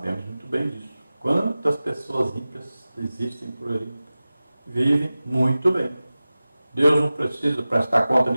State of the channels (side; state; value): both; inverted; correlation -0.96